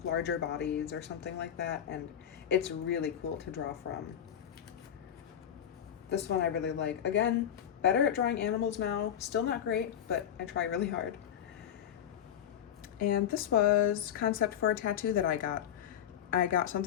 larger bodies or something like that, and it's really cool to draw from. This one I really like. Again, better at drawing animals now. Still not great, but I try really hard. And this was concept for a tattoo that I got. I got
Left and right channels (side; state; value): right; quieter; 9.6 dB